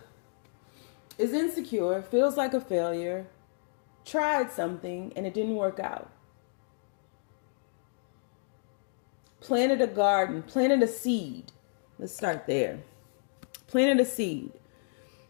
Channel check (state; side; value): silent; right; digital silence